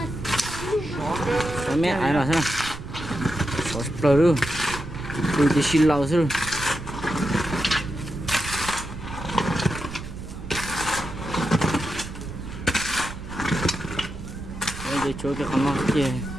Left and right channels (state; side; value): noise; right; rumble, 11 dB below the sound